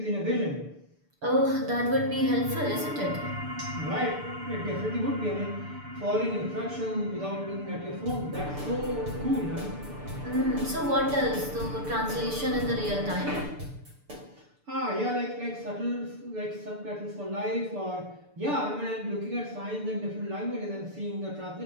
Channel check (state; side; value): late; left; 6.8 ms